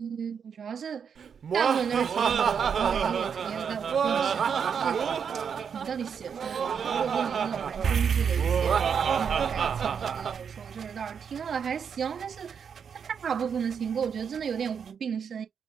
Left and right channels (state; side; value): quieter; left; 7.0 dB